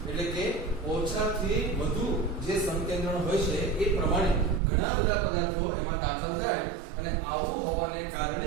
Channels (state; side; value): drops out; left; at 4.6 s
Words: એટલે કે ઓછાથી વધુ જે સંકેન્દ્રણ હોય છે એ પ્રમાણે ઘણા બધા પદાર્થો એમાં દાખલ થાય અને આવું હોવાને